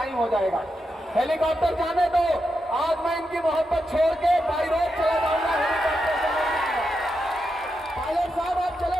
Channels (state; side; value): normal; both; correlation 0.86